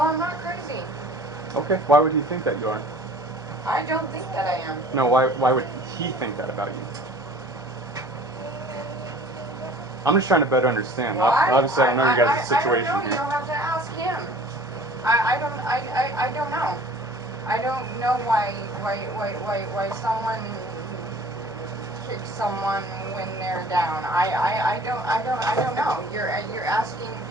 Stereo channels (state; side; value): noise; left; hum, 26 dB below the sound